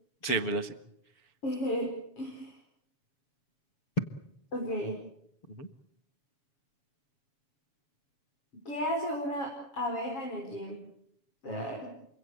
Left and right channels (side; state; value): right; late; 7.2 ms